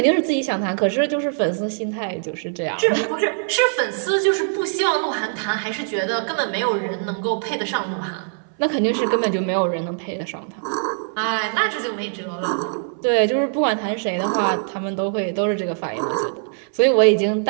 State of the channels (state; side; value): silent; left; 62 dB below the other